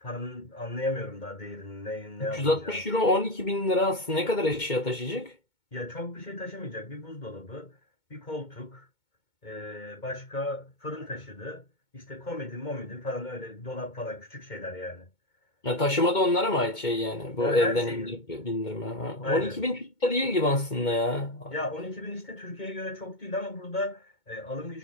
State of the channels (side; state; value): right; late; 2.2 ms